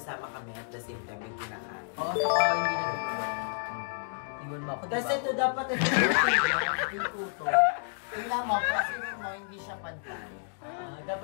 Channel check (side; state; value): right; silent; digital silence